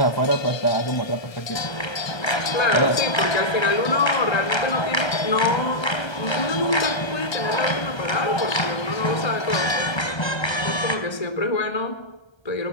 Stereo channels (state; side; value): late; right; 1.3 ms